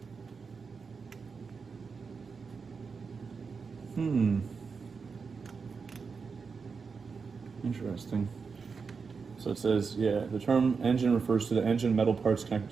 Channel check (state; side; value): quieter; left; 5.2 dB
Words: Interesting. So it says, yeah, the term engine refers to the engine metal parts connected